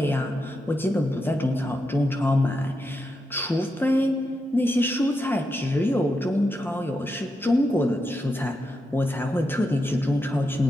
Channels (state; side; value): normal; both; correlation 0.86